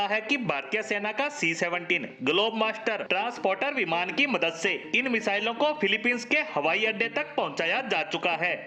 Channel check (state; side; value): identical; both; correlation 1.00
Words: है कि भारतीय सेना का C-17 ग्लोब मास्टर ट्रांसपोर्टर विमान की मदद से इन मिसाइलों को फिलीपींस के हवाई अड्डे तक पहुंचाया जा चुका है।